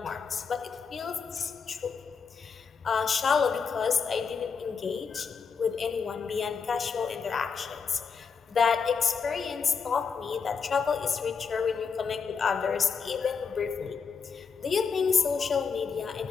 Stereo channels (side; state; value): right; quieter; 5.7 dB